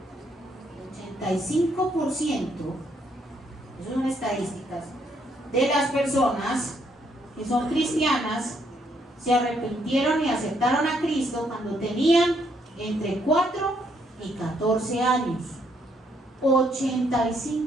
El 85% Esas son estadísticas, de las personas que son cristianas se arrepintieron y aceptaron a Cristo cuando tenían entre 4 y 14 años.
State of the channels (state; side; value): normal; both; correlation 0.72